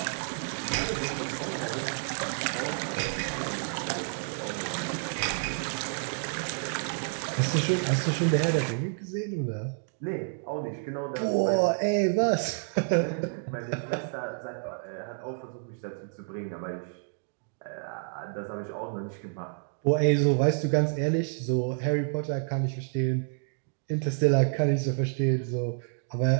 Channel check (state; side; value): silent; left; 58 dB below the other